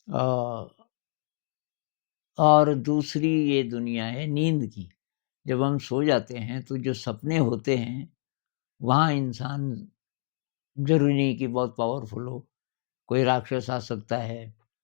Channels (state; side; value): silent; right; digital silence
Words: अ, और दूसरी ये दुनिया है नींद की। जब हम सो जाते हैं तो जो सपने होते हैं, वहाँ इंसान ज़रूरी नहीं कि बहुत पावरफुल हो, कोई राक्षस आ सकता है,